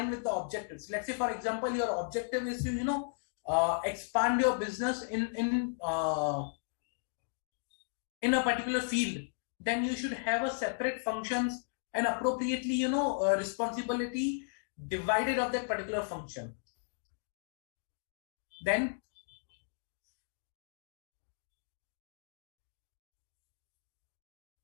with the objectives. Let's say, for example, your objective is to expand your business in a particular field. Then you should have a separate functions and appropriately responsibility divided of that particular function. Then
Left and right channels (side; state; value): right; silent; digital silence